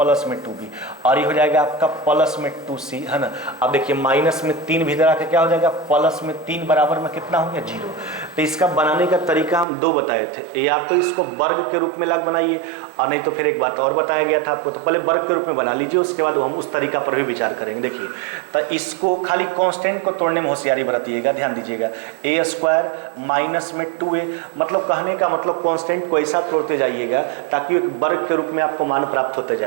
में 2b, और ये हो जाएगा आपका प्लस में 2c, है ना। अब देखिए माइनस में 3 भी इधर आके क्या हो जाएगा प्लस में 3 बराबर में कितना हो गया 0। तो इसका बनाने का तरीका हम 2 बताए थे, या तो इसको वर्ग के रूप में लग बनाइए, और नहीं तो फिर एक बात और बताया गया था आपको, तो पहले वर्ग के रूप में बना लीजिए, उसके बाद हम उस तरीका पर भी विचार करेंगे। देखिए तो इसको खाली कांस्टेंट को तोड़ने में होशियारी बरतिएगा, ध्यान दीजिएगा। a² माइनस में 2a, मतलब कहने का मतलब कांस्टेंट को ऐसा तोड़ते जाइएगा ताकि एक वर्ग के रूप में आपको मान प्राप्त होते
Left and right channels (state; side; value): drops out; left; at 9.7 s